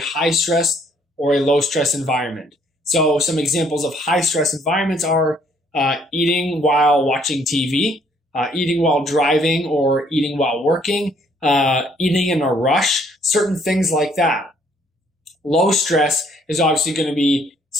stress or a low stress environment. So some examples of high stress environments are eating while watching TV, eating while driving or eating while working, eating in a rush, certain things like that. Low stress is obviously going to be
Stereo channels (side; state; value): both; normal; correlation 0.65